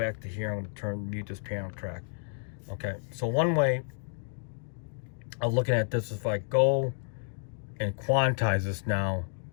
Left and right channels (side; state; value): right; silent; digital silence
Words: to here. I'm going to mute this piano track. Okay, so one way of looking at this is if I go and quantize this now,